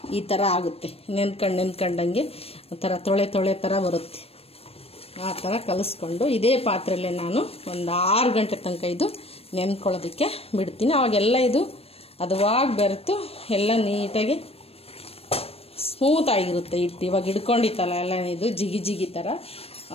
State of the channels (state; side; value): late; right; 0.28 ms